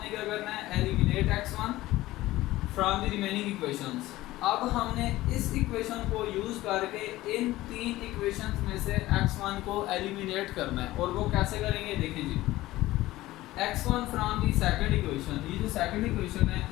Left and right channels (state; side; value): quieter; right; 17.1 dB